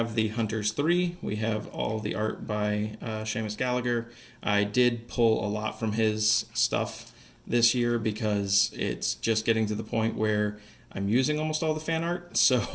the Hunters 3. We have all the art by Seamus Gallagher. I did pull a lot from his stuff this year because it's just getting to the point where I'm using almost all the fan art.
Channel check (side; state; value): both; identical; correlation 1.00